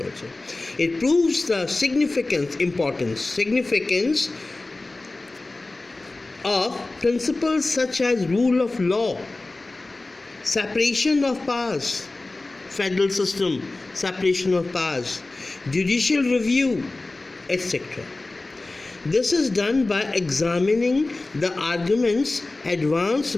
also. It proves the significance of principles such as rule of law, separation of powers, federal system, separation of powers, judicial review, etc. This is done by examining the arguments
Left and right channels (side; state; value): right; quieter; 3.1 dB